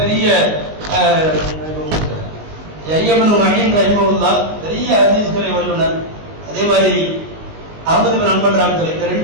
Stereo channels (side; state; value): left; late; 19 ms